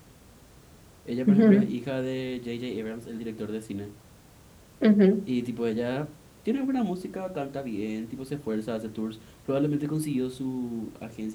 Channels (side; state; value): both; identical; correlation 1.00